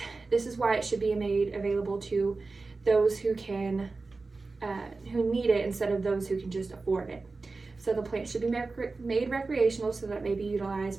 this is why it should be made available to those who need it instead of those who can just afford it. So the plant should be made recreational so that it may be utilized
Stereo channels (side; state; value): left; quieter; 3.8 dB